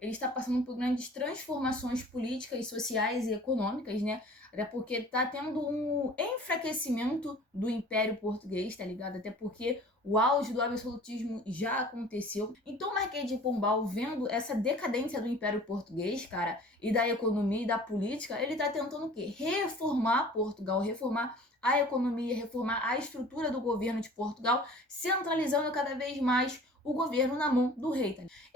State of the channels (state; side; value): normal; both; correlation 0.46